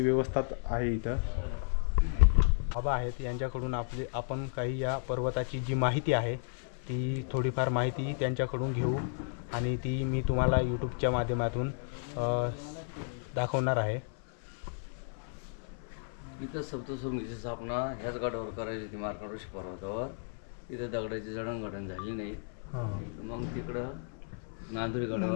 व्यवस्था आहे. इथं बाबा आहेत यांच्याकडून आपण काही या पर्वताची जी माहिती आहे ती थोडीफार माहिती त्यांच्याकडून घेऊ. आणि ती मी तुम्हाला यूट्यूबच्या माध्यमातून दाखवणार आहे. इथं सप्तशृंगीची स्थापना ह्याच गडावर करायची होती मार्कंड ऋषी पर्वतावर. इथं दगडाची जडणघडण झाली नाही. मग तिकडं नांदुरी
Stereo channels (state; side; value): silent; right; 56 dB below the other